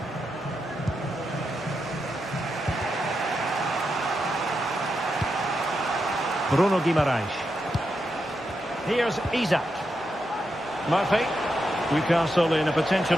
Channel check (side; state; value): both; normal; correlation 0.85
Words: Bruno Guimaraes. Here's Isak. Murphy. Newcastle in a